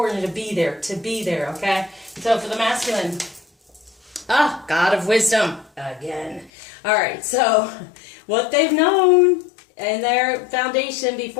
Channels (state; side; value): drops out; right; at 6.5 s